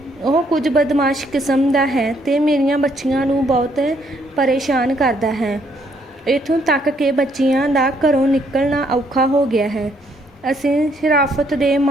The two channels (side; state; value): both; normal; correlation 0.69